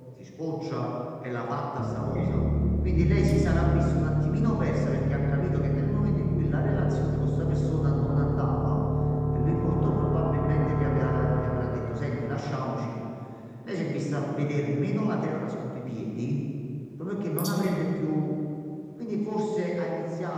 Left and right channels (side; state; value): both; identical; correlation 1.00